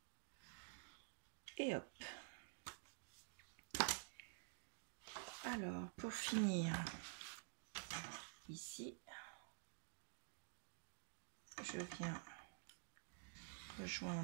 Et hop. Alors, pour finir, ici, je viens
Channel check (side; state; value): left; silent; digital silence